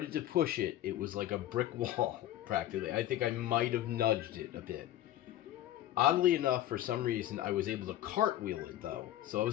to push it. It was like a brick wall, practically. I think I might have nudged it a bit. Oddly enough, for some reason, I was able to cartwheel it, though. So I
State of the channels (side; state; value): right; quieter; 13.5 dB